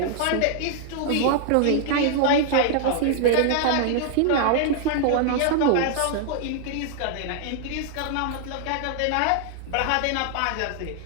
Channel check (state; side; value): different; both; correlation 0.00